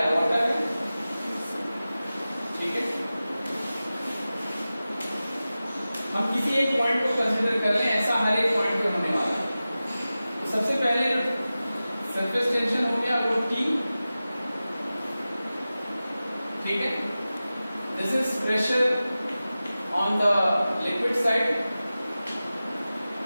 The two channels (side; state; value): both; inverted; correlation -0.95